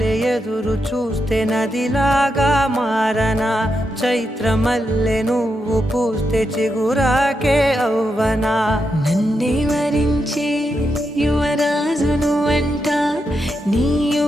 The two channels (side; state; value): both; normal; correlation 0.85